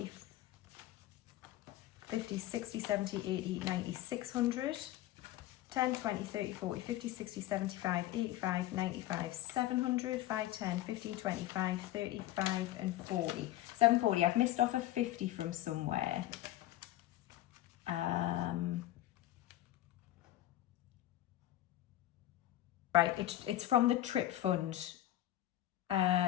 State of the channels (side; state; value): right; quieter; 14.5 dB